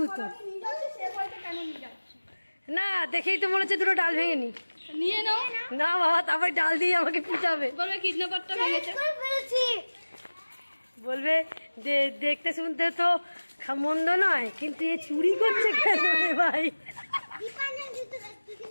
না দেখেই তো মনে হচ্ছে দুটো ডাল ভেঙে নি। নিয়ে নাও না বাবা, তারপর ডাল দিয়ে আমাকে পিটাবে, বলবে কিডন্যাপারটা ভেঙেছে। বলবে যে দেখতে শুনতে তো মন্দ নয়, কিন্তু এ চুরি করছে কেন রে ভাই?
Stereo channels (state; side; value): inverted; both; correlation -1.00